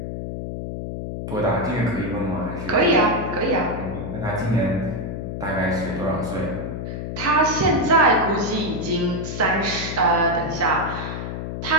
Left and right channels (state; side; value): noise; left; hum, 6 dB below the sound